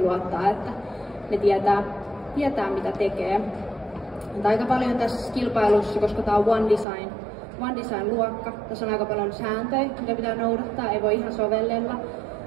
luottaa, että ne tietää mitä tekee. Mutta aika paljon tässä kilpailussa, koska tämä on One Design-luokka, tässä on aika paljon sääntöjä, mitä pitää noudattaa, ei voi ihan sovellella.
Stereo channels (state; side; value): drops out; left; at 6.9 s